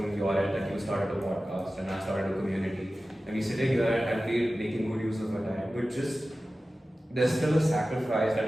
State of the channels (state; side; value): normal; both; correlation 0.95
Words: your end, like you started a podcast and I started a community, and we sitting here and we're making good use of our time, but just there's still a sacrifice